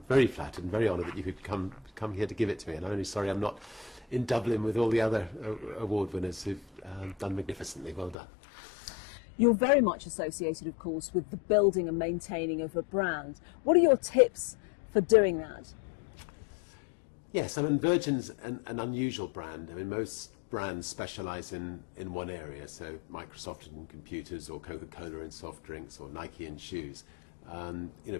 flattered and very honoured that you could come here to give it to me. And I'm only sorry I'm not in Dublin with all the other award winners who've done magnificently. Well done. You're very much associated, of course, with the building and maintaining of a brand. What are your tips for doing that? Yes, I mean, Virgin's an unusual brand. I mean, most brands specialise in one area, so Microsoft in computers, or Coca-Cola in soft drinks, or Nike in shoes.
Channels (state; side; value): drops out; right; at 8.2 s